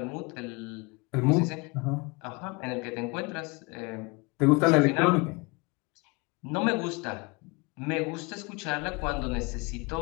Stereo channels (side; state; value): right; quieter; 27.9 dB